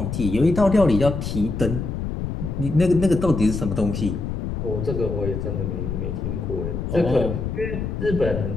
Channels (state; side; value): noise; left; rumble, 3 dB below the sound